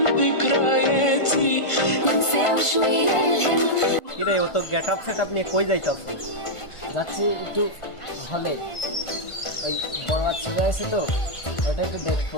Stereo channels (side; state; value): right; late; 1.5 ms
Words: ذكرياتي ننسى شوية الهم কিরে ও তো getup setup নিয়ে কই যাইতাছ? যাচ্ছি একটু হলে, ওই বড় বাচ্চা আছে তো, ওটা একটু দেখবো।